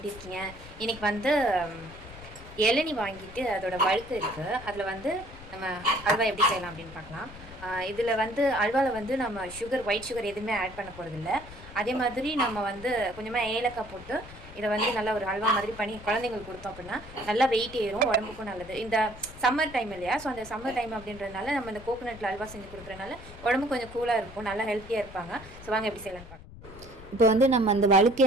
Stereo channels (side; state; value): left; noise; rumble, 17 dB below the sound